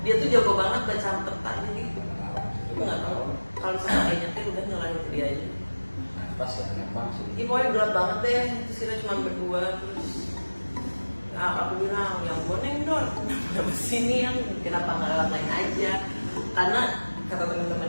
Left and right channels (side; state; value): both; inverted; correlation -1.00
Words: Dia tuh jago banget baca peta, jadi aku nggak tahu kalau misalnya dia nyetir udah nyalahin itu dia aja. Pas ya Lembang sih. Ini pokoknya gelap banget deh, terus kita cuma berdua, terus aku bilang yang boneng dong, kenapa sini yang kenapa nggak lewat lain aja? Karena kata